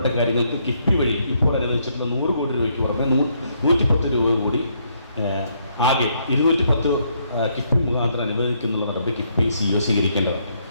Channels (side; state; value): both; inverted; correlation -0.73